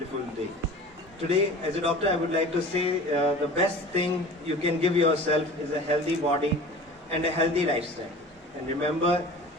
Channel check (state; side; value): normal; both; correlation 0.40